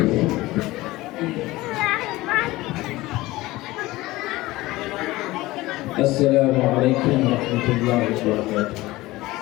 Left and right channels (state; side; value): quieter; right; 18.9 dB